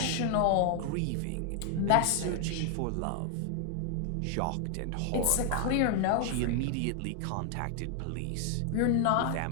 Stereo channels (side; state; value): both; different; correlation 0.00